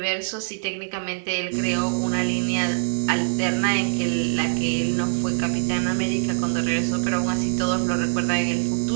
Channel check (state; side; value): silent; left; digital silence